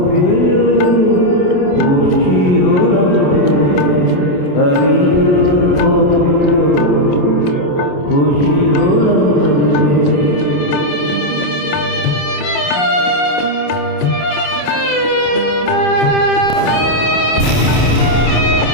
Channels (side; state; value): right; late; 28 ms